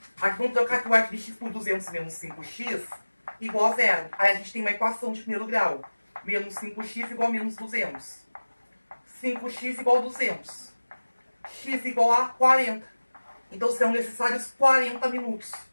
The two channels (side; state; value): both; inverted; correlation -1.00